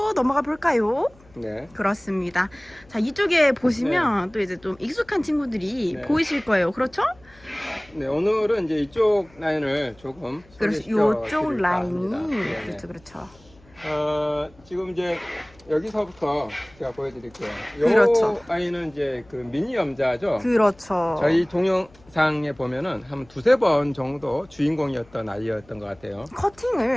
넘어가 볼까요? 네. 그렇습니다. 자, 이쪽에 보시면 또 이제 좀 익숙한 친구들이 네. 보이실 거예요. 그렇죠? 네, 오늘은 이제 이쪽 라인을 조금 그래서 소개시켜 요쪽 드릴까 라인이 합니다. 네, 네. 그렇죠, 그렇죠. 지금 이제 여기서부터 제가 보여드릴게요. 요 그렇죠. 아이는 이제 그 미니 염자죠. 그렇죠. 저희 동영상에 보면은 한 두세 번 정도 주인공이었던 아이였던 것 같아요.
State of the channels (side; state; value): left; noise; hum, 27 dB below the sound